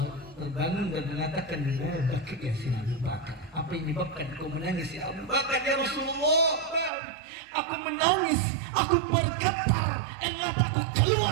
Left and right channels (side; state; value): left; drops out; at 6.9 s